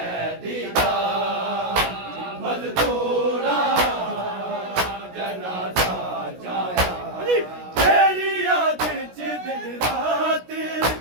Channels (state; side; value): late; left; 16 ms